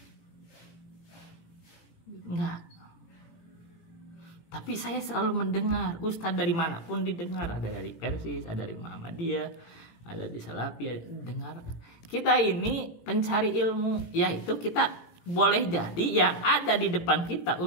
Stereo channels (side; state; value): right; late; 18 ms